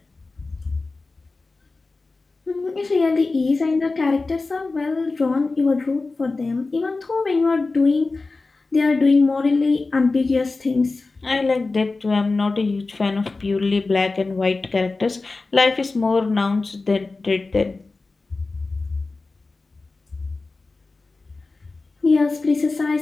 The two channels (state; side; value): quieter; right; 3.6 dB